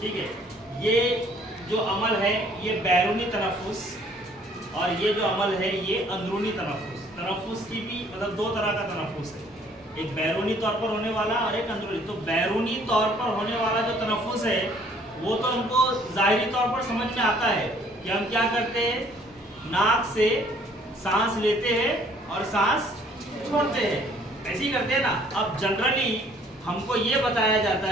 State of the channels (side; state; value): both; normal; correlation 0.59